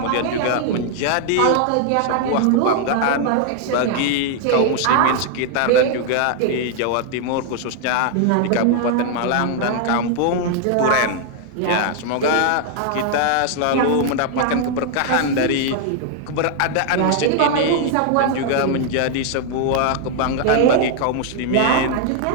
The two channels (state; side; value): different; both; correlation 0.00